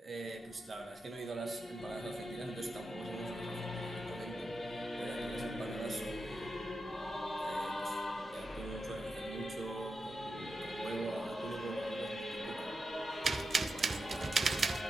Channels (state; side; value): normal; both; correlation 0.88